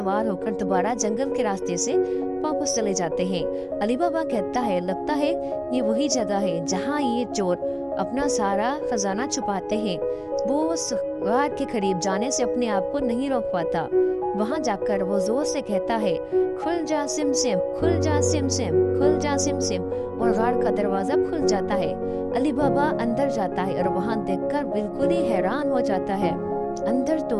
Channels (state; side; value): identical; both; correlation 1.00